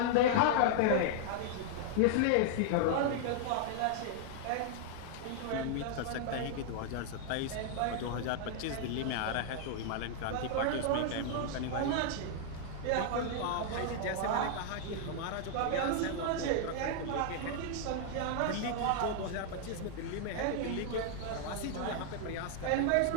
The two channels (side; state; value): both; different; correlation -0.01